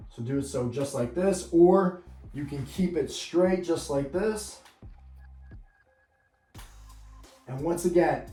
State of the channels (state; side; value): identical; both; correlation 1.00